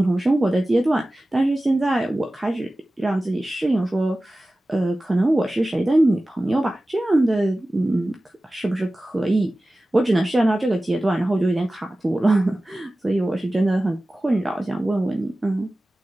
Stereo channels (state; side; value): normal; both; correlation 0.96